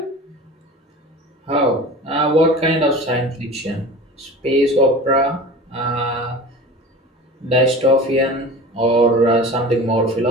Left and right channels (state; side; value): normal; both; correlation 0.36